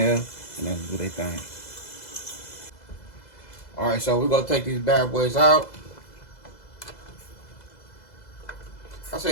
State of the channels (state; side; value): late; right; 2.0 ms